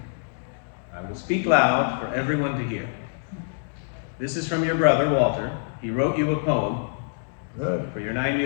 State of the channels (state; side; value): silent; right; digital silence